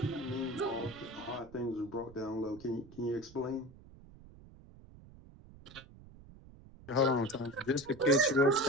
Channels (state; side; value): noise; right; rumble, 20 dB below the sound